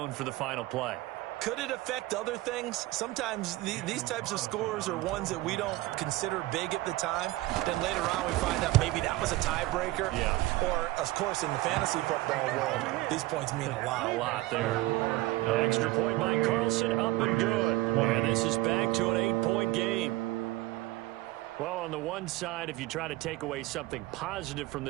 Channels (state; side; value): quieter; left; 18.4 dB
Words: for the final play. Could it affect other things? Sometimes these types of scores are ones that we don't consider big at the time. Then later on we find out maybe that was a tiebreaker. Yeah. Or, of course, in the fantasy football world, these points mean a lot. A lot there. An extra point by Carlson, up and good. And this is back to an 8-point game. Well, on the one side, if you try to take away something positive from